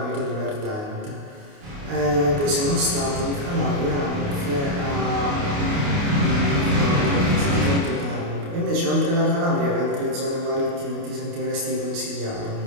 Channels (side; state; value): left; late; 29 ms